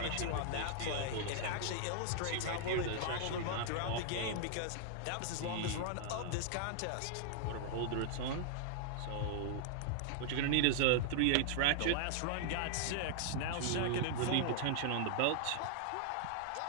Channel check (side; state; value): both; different; correlation -0.01